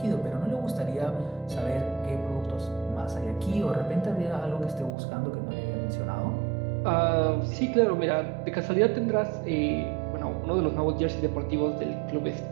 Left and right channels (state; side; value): drops out; left; at 4.9 s